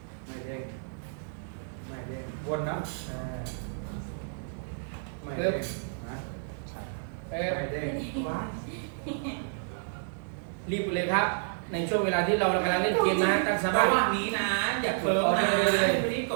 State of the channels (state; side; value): silent; left; digital silence